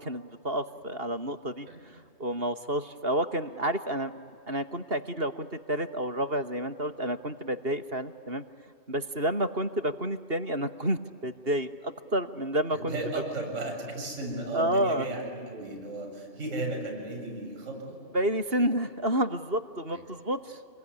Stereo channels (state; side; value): late; left; 2.8 ms